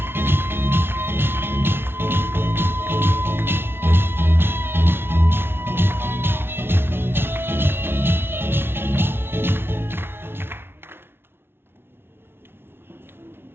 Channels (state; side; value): late; left; 0.11 ms